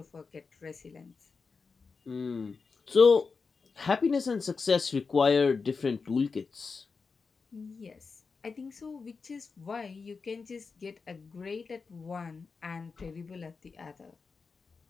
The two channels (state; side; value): quieter; right; 4.8 dB